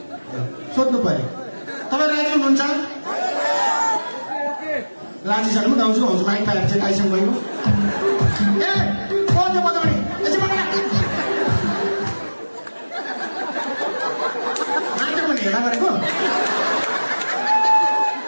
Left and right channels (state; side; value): inverted; both; correlation -1.00